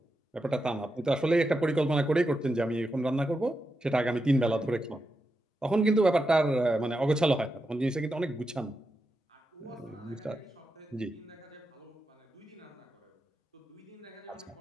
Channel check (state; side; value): normal; both; correlation 0.87